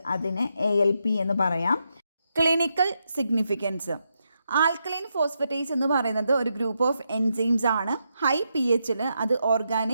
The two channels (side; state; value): both; inverted; correlation -0.83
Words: അതിനെ ALP എന്ന് പറയാം. Clinical significance. ആൽക്കലൈൻ ഫോസ്ഫറ്റേസ് എന്ന് പറയുന്നത് ഒരു ഗ്രൂപ്പ് ഓഫ് എൻസൈംസ് ആണ്. ഹൈ pHൽ അത്